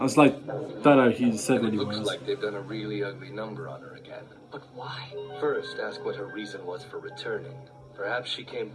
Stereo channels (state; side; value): identical; both; correlation 1.00